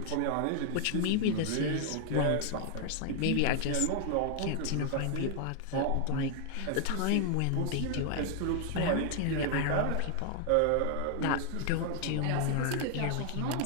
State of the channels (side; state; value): both; different; correlation 0.00